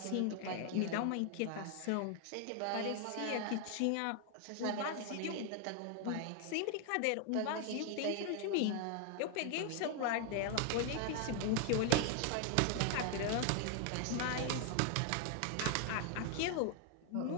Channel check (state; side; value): different; both; correlation 0.00